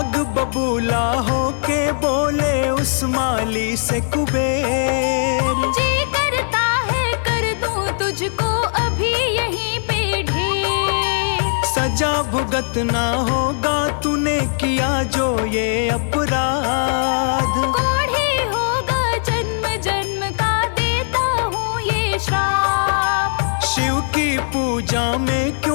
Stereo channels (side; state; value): right; silent; digital silence